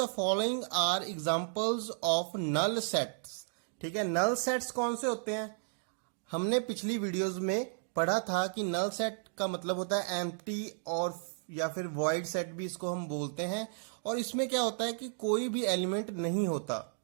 following are examples of null sets. ठीक है, नल सेट्स कौन से होते हैं? हमने पिछली वीडियोस में पढ़ा था कि नल सेट का मतलब होता है एम्प्टी और या फिर वॉइड सेट भी इसको हम बोलते हैं। और इसमें क्या होता है कि कोई भी एलिमेंट नहीं होता।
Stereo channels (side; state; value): left; silent; digital silence